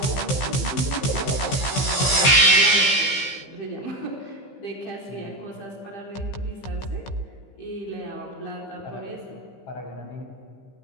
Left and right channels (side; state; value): right; late; 15 ms